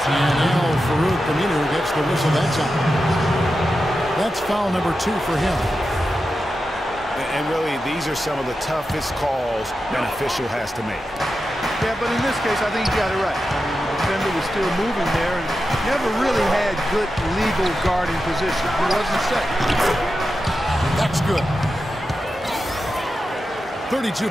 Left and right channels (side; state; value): both; normal; correlation 0.90